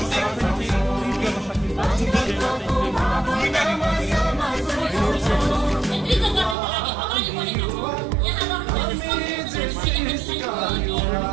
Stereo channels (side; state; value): left; drops out; at 6.6 s